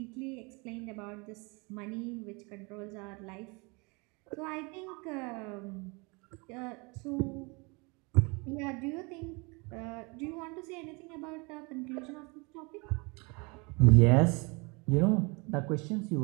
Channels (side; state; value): left; quieter; 29.1 dB